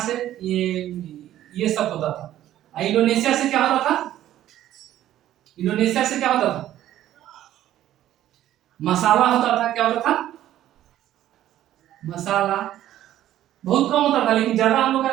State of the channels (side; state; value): left; quieter; 12.8 dB